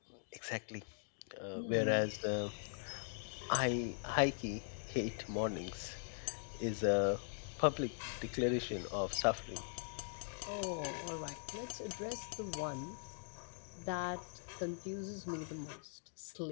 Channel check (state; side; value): silent; right; digital silence